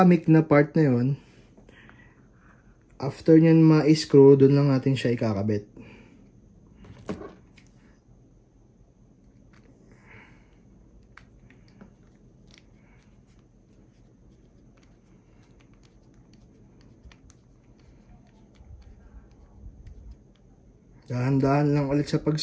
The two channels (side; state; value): both; identical; correlation 1.00